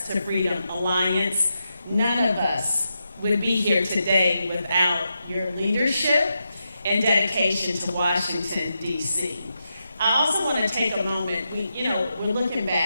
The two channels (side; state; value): both; inverted; correlation -0.86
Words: to Freedom Alliance. None of us would be here today without your leadership and dedication to Washington, D.C. I also want to take a moment. We're looking